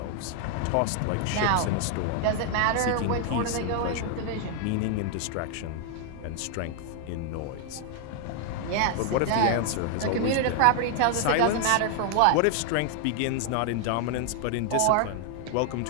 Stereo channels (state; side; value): different; both; correlation 0.00